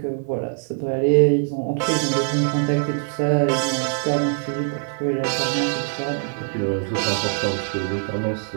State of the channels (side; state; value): left; silent; 57 dB below the other